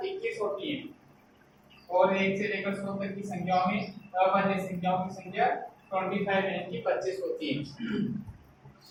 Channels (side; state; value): both; identical; correlation 1.00